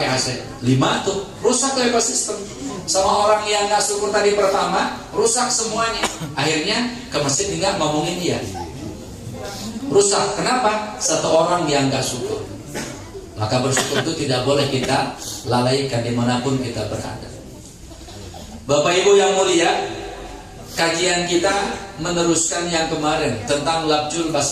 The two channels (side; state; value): both; identical; correlation 1.00